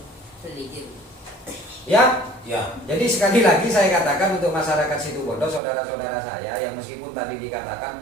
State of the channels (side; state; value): left; drops out; at 5.6 s